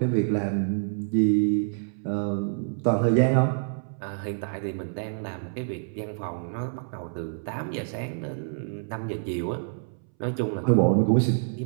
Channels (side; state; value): left; silent; 60 dB below the other